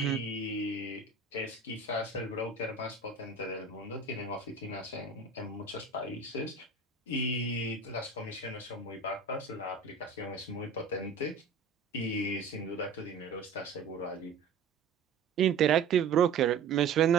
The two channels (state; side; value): quieter; left; 4.8 dB